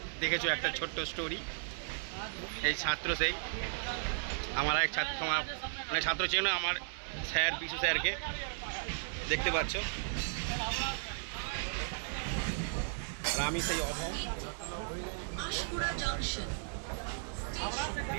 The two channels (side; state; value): left; silent; digital silence